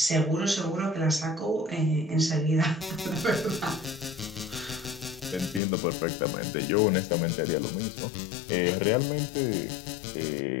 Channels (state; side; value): drops out; right; at 5.6 s